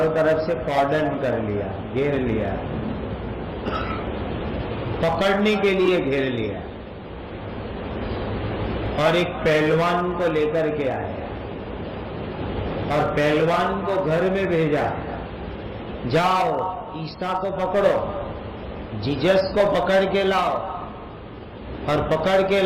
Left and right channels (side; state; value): both; identical; correlation 1.00